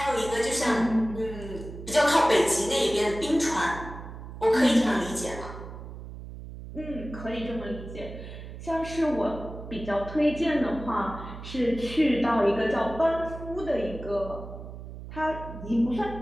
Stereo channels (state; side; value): noise; right; hum, 12 dB below the sound